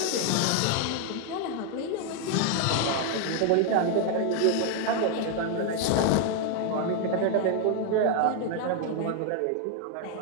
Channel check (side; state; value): both; different; correlation 0.00